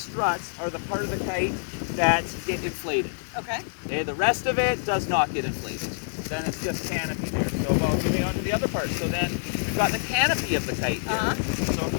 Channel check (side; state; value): right; silent; digital silence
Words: are the part of the kite that get inflated. Okay. Okay, the rest of it does not get inflated. Then it's just canopy there. So moving on to the other part. So then we've got the canopy of the kite here. So